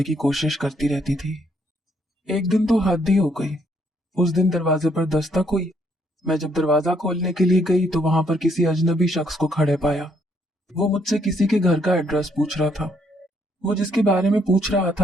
की कोशिश करती रहती थी। एक दिन तो हद ही हो गई। उस दिन दरवाजे पर दस्तक हुई। मैं जब दरवाजा खोलने के लिए गई तो वहां पर किसी अजनबी शख्स को खड़े पाया। वो मुझसे किसी के घर का एड्रेस पूछ रहा था। वो जिसके बारे में पूछ रहा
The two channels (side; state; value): both; normal; correlation 0.70